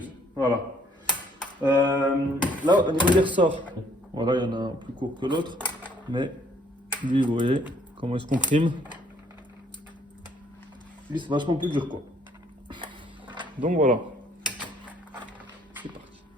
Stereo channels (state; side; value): normal; both; correlation 0.64